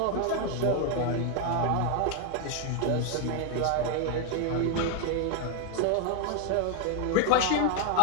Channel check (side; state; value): both; different; correlation 0.00